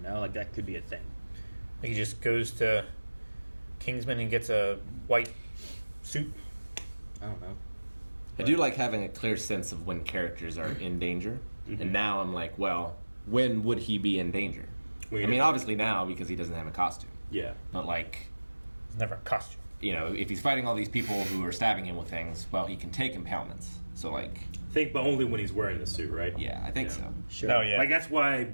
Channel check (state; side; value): inverted; both; correlation -1.00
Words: like that could be a thing. He just goes to Kingsman and gets a white suit. I don't know. I do like having a clear sense of when characters are in danger. And now I'm like, well, when would he be in danger? I mean, obviously now because he doesn't have a costume. Yeah. But like, It's never a costume. you know, if he's fighting all these people who are stabbing him with things, well, he can take impalements. So like, Think, but only when he's wearing the suit, right? yeah, I think so. Sure. Oh, yeah. Like that's why